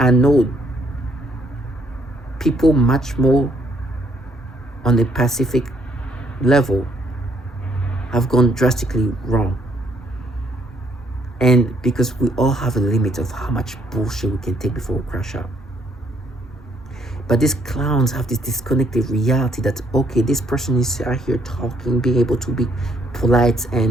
know people much more on the Pacific level have gone drastically wrong. And because we all have a limit of how much bullshit we can take before we crash out. But these clowns have this disconnected reality that, okay, this person is out here talking, being able to be polite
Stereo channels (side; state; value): both; normal; correlation 0.68